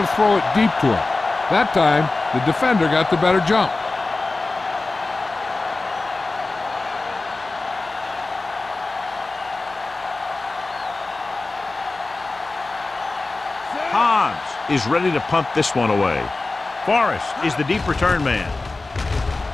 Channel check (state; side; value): quieter; right; 3.4 dB